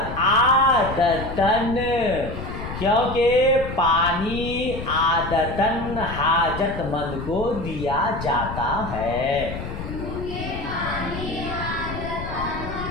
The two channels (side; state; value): left; noise; rumble, 8 dB below the sound